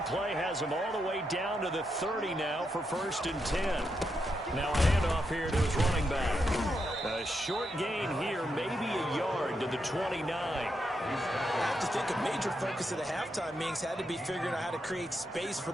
play has them all the way down to the 30 now for 1st and 10. Now a handoff here to his running back. A short gain here, maybe a yard to the 29. I have to think a major focus of the halftime meetings had to be figuring out how to create space for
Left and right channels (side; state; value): both; normal; correlation 0.83